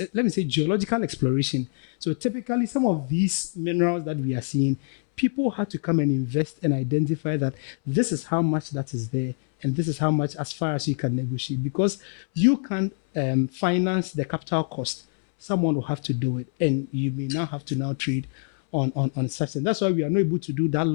me say, geological exploration. So typically some of these minerals that we are seeing, people have to come and invest and identify that this is how much that is there and this is how much as far as you can negotiate. Because you can't finance the capital cost. Someone will have to do it, and you may now have to now trade on such. And that's why we are not able to do that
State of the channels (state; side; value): silent; right; 62 dB below the other